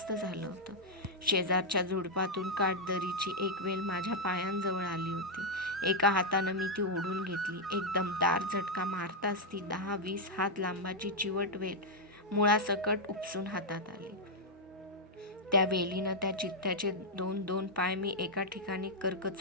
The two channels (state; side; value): normal; both; correlation -0.02